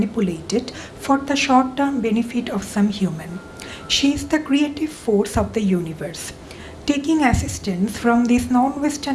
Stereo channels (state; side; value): identical; both; correlation 1.00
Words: for the short-term benefit of some human. She is the creative force of the universe. Taking assistance from these